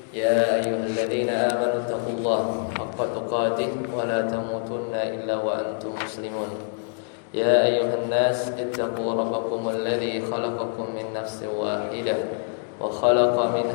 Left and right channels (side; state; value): right; silent; 61 dB below the other